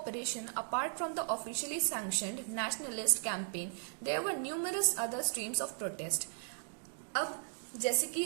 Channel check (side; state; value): left; silent; digital silence